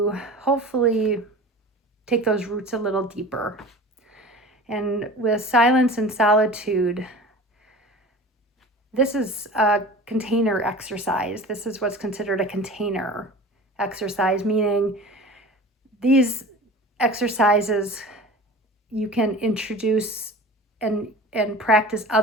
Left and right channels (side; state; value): both; normal; correlation 0.37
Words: hopefully take those roots a little deeper. And with silence and solitude, this is a container exercise. This is what's considered a container exercise, meaning these exercises you can introduce and practice